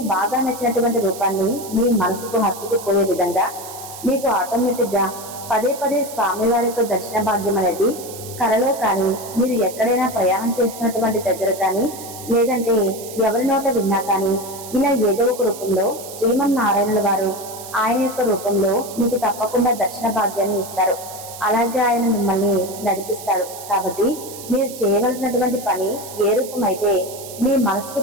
బాగా నచ్చినటువంటి రూపాన్ని మీ మనసుకు హత్తుకుపోయే విధంగా మీకు ఆటోమేటిక్ గా పదే పదే స్వామివారి యొక్క దర్శన భాగ్యం అనేది కలలో కానీ, మీరు ఎక్కడైనా ప్రయాణం చేస్తున్నటువంటి దగ్గర కానీ, లేదంటే ఎవరి నోట విన్నా కానీ, ఇలా ఏదో ఒక రూపంలో శ్రీమన్నారాయణుల వారు ఆయన యొక్క రూపంలో మీకు తప్పకుండా దర్శన భాగ్యాన్ని ఇస్తారు. అలాగే ఆయన మిమ్మల్ని నడిపిస్తాడు. కాబట్టి మీరు చేయవలసినటువంటి పని ఏ రూపమైతే మీ మనసుకు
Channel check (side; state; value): right; noise; hiss, 13 dB below the sound